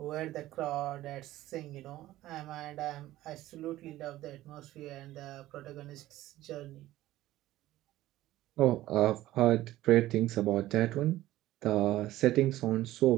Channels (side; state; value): left; quieter; 15.4 dB